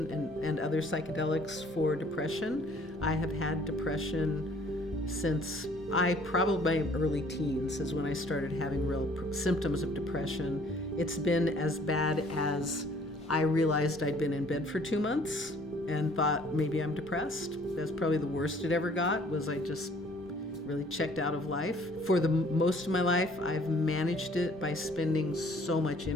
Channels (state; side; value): normal; both; correlation 0.57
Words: and other psychedelics for depression. I have had depression since probably my early teens is when I started having real symptoms of depression. It's been as bad as I realized I'd been in bed for 2 months and thought maybe I'm depressed. That's probably the worst it ever got, was I just really checked out of life. For the most of my life, I've managed it by spending so much